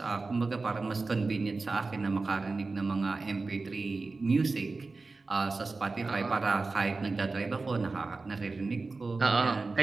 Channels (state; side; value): quieter; left; 3.8 dB